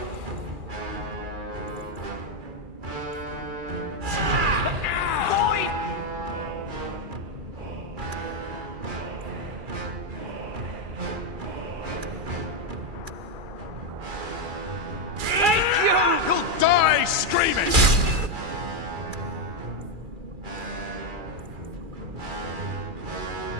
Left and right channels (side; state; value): left; late; 2.4 ms